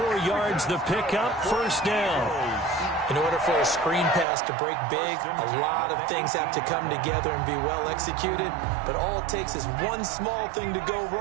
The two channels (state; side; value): drops out; left; at 4.2 s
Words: yards the pickup, 1st down. In order for a screen pass to break big, a lot of things have to come together and be well executed. But all it takes is one small thing to go